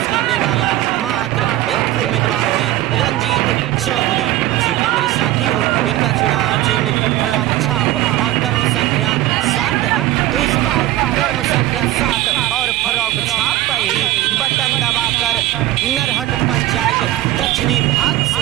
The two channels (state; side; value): quieter; left; 14.9 dB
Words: करने वाला मात्र एक ही उम्मीदवार है, रंजीत चौधरी। जी हाँ मेरे साथियों, इनका चुनाव चिन्ह फ्रॉक छाप और कर्म संख्या 7 है। तो इस बार कर्म संख्या 7 और फ्रॉक छाप पर ही बटन दबाकर नरहट पंचायत दक्षिणी भाग